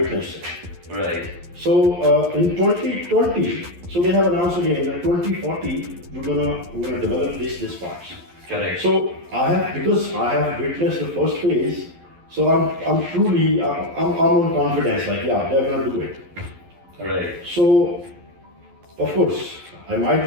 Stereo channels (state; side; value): late; left; 11 ms